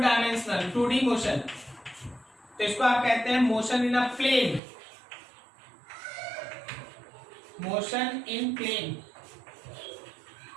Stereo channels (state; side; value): drops out; left; at 4.6 s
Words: 2D motion, तो इसको आप कहते हैं motion in a plane, motion in plane.